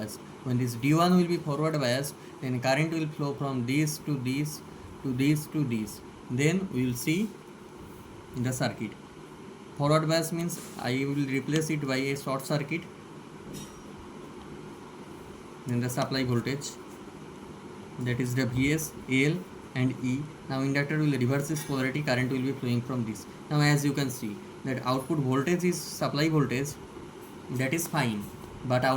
When this D1 will be forward biased, then current will flow from this to this to this to this. Then we will see the circuit. Forward bias means I will replace it by a short circuit. Then the supply voltage, that is the Vs, L and E. Now inductor will reverse its polarity, current will be flowing from this. Now as you can see that output voltage is supply voltage, that is fine, but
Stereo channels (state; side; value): identical; both; correlation 1.00